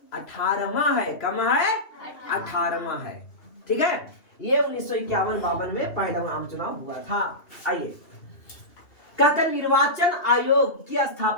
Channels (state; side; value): late; right; 2.8 ms